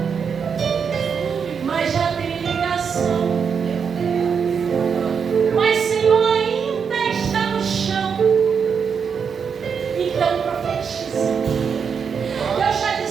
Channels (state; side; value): quieter; left; 6.5 dB